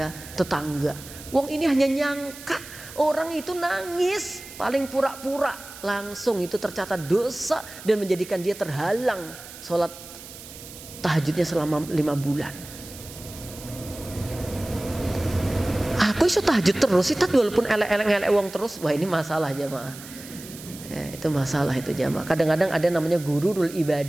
tetangga? Wong ini hanya nyangka orang itu nangis, paling pura-pura, langsung itu tercatat dosa dan menjadikan dia terhalang sholat tahajudnya selama 5 bulan. Aku iso tahajud terus sih, walaupun elek-elek wong terus, wah ini masalah jamaah. Ya, itu masalah itu jamaah. Kadang-kadang ada namanya gururul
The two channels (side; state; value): right; noise; hiss, 15 dB below the sound